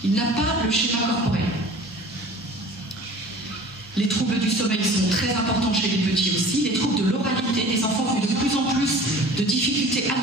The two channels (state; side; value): normal; both; correlation 0.44